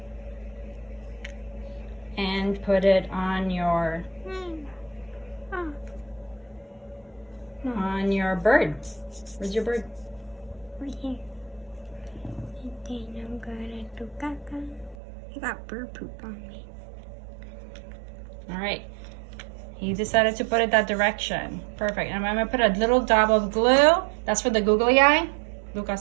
And put it on your bird. Where's your bird? Right here. And then I'm gonna do caca. I got bird poop on me. All right. He decided to put it that direction. Perfect. And I'm gonna put a little dab of glue. That's for the googly eye.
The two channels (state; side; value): drops out; left; at 15.0 s